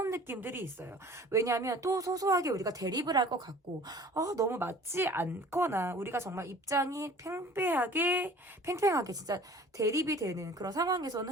느낌들이 있어요. 왜냐하면 또 소소하게 우리가 대립을 할 것 같고 너무 맞지 않거나 우리가 정말 입장이 팽팽하게 진짜 대립이 되는 그런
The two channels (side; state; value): both; normal; correlation 0.47